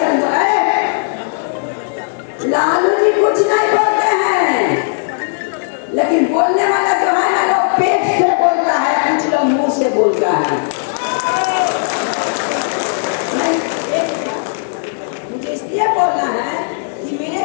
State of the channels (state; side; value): silent; right; 69 dB below the other